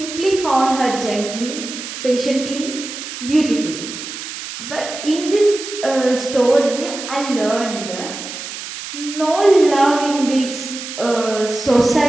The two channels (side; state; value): right; noise; hiss, 9 dB below the sound